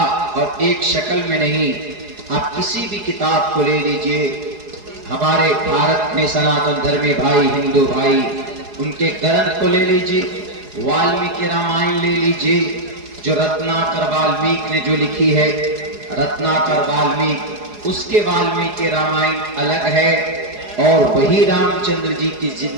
اور ایک شکل میں نہیں۔ آپ کسی بھی کتاب کو لے لیجئے، ہمارے بھارت میں سناتن دھرمی بھائی، ہندو بھائی، ان کے گرنتھ کو لے لیجئے، والمیکی رامائن لے لیجئے، جو رتناکر والمیک نے جو لکھی ہے، رتناکر والمیک، اس کے والمیکی رامائن الگ ہے، اور وہی رام چندر جی کی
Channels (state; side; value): late; left; 4.8 ms